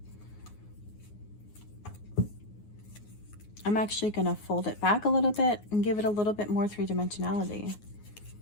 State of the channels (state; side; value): late; right; 9.5 ms